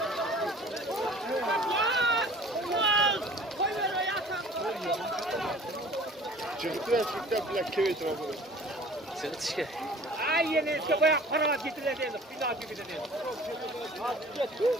Çıktı plak kevet var. Çıkışga. Ay yine bayağı para getirildi. Bina gibi dedi.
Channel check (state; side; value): normal; both; correlation 0.47